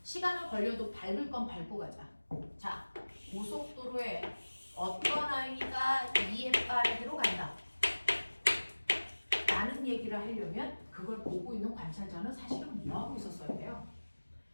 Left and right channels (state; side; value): inverted; both; correlation -1.00